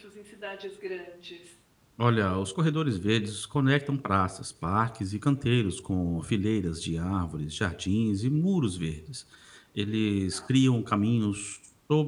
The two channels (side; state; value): both; identical; correlation 1.00